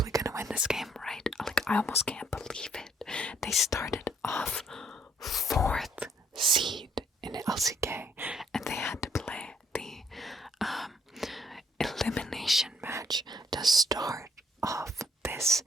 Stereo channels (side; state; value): both; normal; correlation 0.66